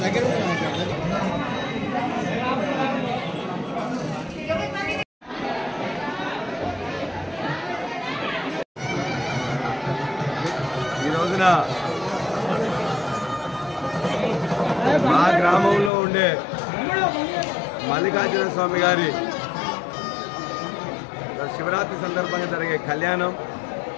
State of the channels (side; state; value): right; drops out; at 15.9 s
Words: ఈ రోజున మా గ్రామంలో ఉండే మల్లికార్జున స్వామి గారి శివరాత్రి సందర్భంగా జరిగే కళ్యాణం